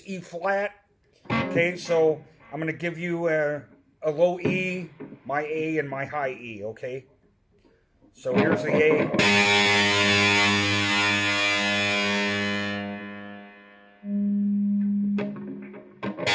E flat. Okay, so I'm going to give you a low E, my A, and my high E, okay? So here's the A.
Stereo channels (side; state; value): both; identical; correlation 1.00